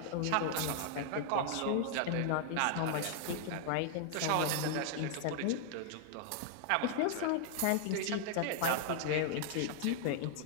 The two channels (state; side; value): different; both; correlation 0.00